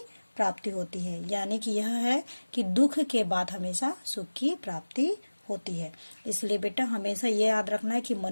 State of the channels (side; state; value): both; inverted; correlation -1.00